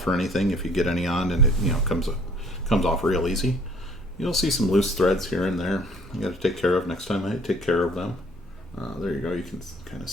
or anything if you get any on, and it comes off real easy. You'll see some loose threads here and there. You got to take care of next time. I take care of them. There you go. You can kind of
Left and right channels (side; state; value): both; normal; correlation 0.57